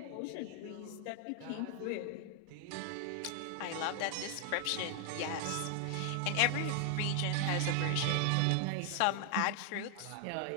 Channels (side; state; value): both; different; correlation 0.00